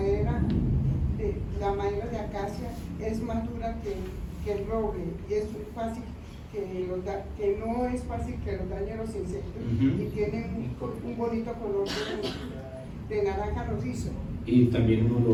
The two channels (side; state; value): both; identical; correlation 1.00